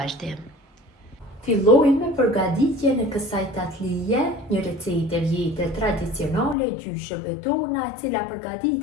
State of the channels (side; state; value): right; drops out; at 6.6 s